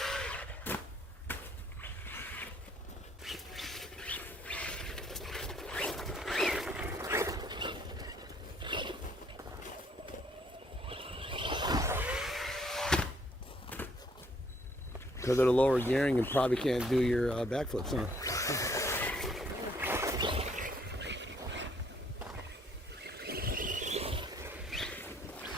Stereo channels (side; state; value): both; normal; correlation 0.64